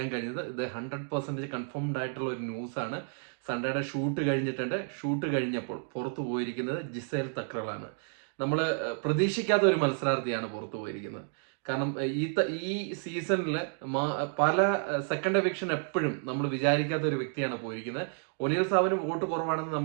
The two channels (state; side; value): silent; left; 57 dB below the other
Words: കഴിഞ്ഞത്. ഇത് 100% കൺഫേംഡ് ആയിട്ടുള്ള ഒരു ന്യൂസാണ്. സൺഡേയുടെ ഷൂട്ട് കഴിഞ്ഞിട്ടുണ്ട്. ഷൂട്ട് കഴിഞ്ഞപ്പോൾ പുറത്തു പോയിരിക്കുന്നത് ജിസേൽ തക്രലാണ്. നമ്മൾ പ്രതീക്ഷിക്കാത്ത ഒരു മത്സരാർത്ഥിയാണ് പുറത്തു പോയിരിക്കുന്നത്. കാരണം ഈ സീസണിൽ പല സെക്കൻഡ് എവിക്ഷൻ എപ്പോഴും നമ്മൾ വിചാരിക്കാത്ത ഒരു വ്യക്തിയാണ് പോയിരിക്കുന്നത്. ഒനിൽ സാബിന് വോട്ട് കുറവാണെന്ന്